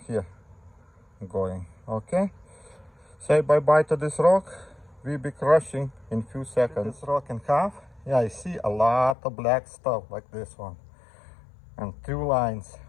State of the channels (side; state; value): right; drops out; at 9.2 s